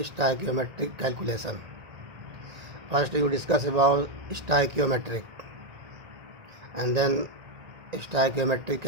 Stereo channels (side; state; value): left; late; 1.9 ms